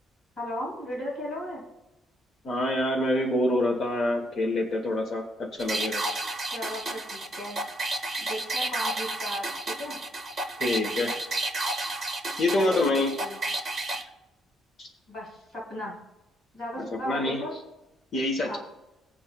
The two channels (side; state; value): both; normal; correlation 0.72